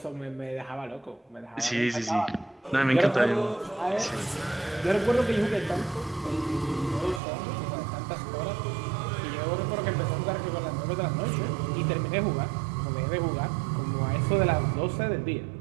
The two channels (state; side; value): drops out; left; at 7.2 s